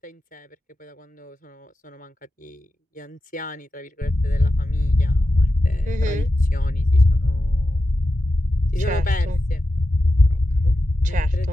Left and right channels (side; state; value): both; normal; correlation 0.91